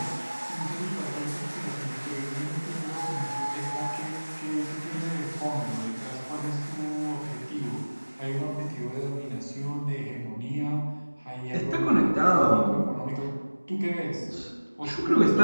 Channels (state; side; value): inverted; both; correlation -1.00